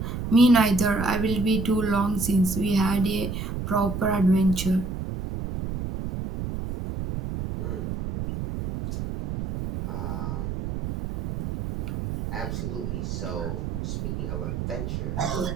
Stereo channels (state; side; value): noise; right; rumble, 4 dB below the sound